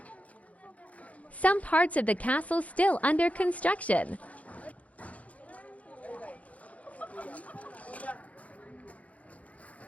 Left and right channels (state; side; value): late; right; 0.067 ms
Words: Some parts of the castle still under construction.